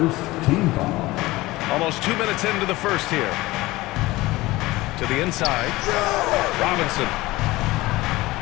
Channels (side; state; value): right; quieter; 19.4 dB